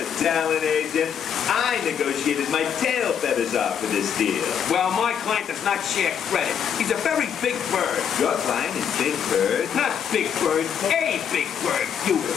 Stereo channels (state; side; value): quieter; right; 8.0 dB